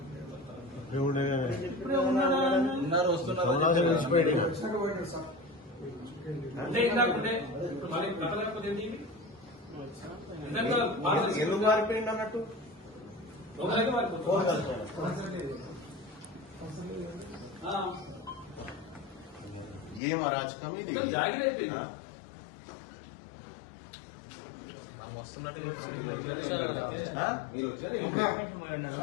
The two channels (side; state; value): right; drops out; at 20.0 s